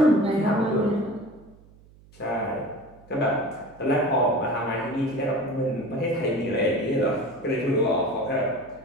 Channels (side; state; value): right; noise; hum, 25 dB below the sound